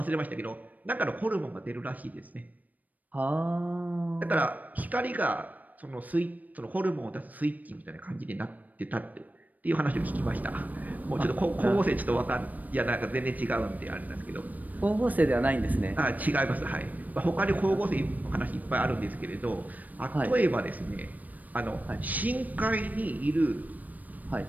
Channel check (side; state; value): left; late; 0.079 ms